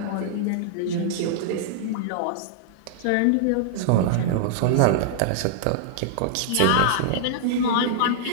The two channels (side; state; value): both; different; correlation -0.01